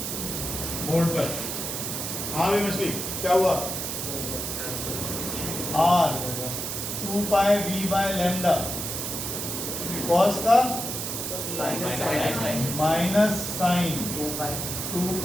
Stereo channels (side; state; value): right; noise; hiss, 4 dB below the sound